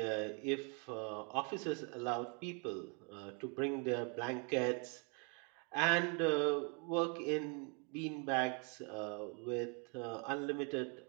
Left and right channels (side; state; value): left; quieter; 36.7 dB